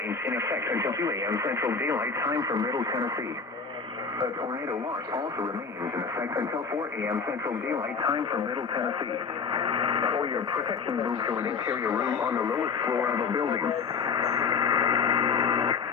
in effect until 2 a.m. Central Daylight Time for Middle Tennessee. A tornado watch also remains in effect until 4 a.m. Central Daylight Time for Middle Tennessee. For your protection, move to an interior room on the lowest floor of a building.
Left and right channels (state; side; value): quieter; right; 5.3 dB